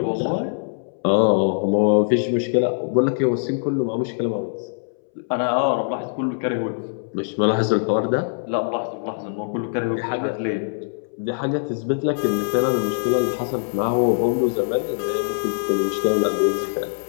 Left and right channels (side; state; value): right; silent; 64 dB below the other